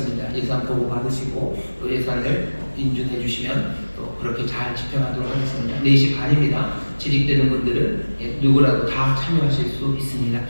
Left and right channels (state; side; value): inverted; both; correlation -1.00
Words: 예산 보고 받으시고 또 예산을 인준해 주시면 또 그렇게 잘 집행하도록 하겠습니다. 4시 반입니다. 재직되는 분들은 누구라도 다 참여하실 수 있습니다.